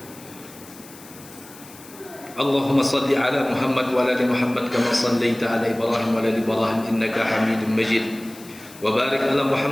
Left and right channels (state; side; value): noise; left; hiss, 20 dB below the sound